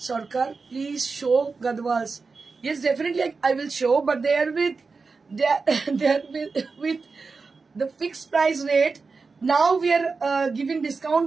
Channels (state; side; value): quieter; left; 4.4 dB